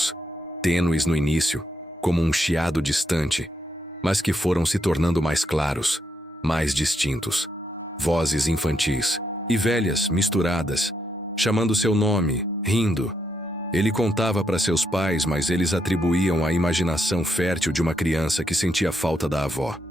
tênues no início, como um chiado distante, mas que foram se tornando mais claros, mais distintos. Vozes infantis e velhas misturadas, chamando seu nome, rindo. Ele contava para seus pais, mas eles atribuíam à imaginação fértil de uma criança que sentia falta da avó.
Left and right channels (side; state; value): both; normal; correlation 0.78